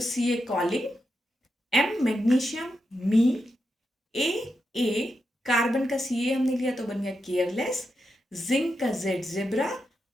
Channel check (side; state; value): both; normal; correlation 0.86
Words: Ca calling, M magnesium, मी, ए carbon का Ca हमने लिया तो बन गया केयरलेस, जिंक का Z जेब्रा,